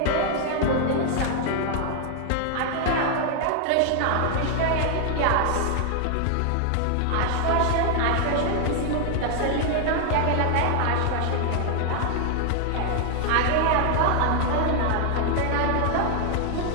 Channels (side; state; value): both; different; correlation 0.00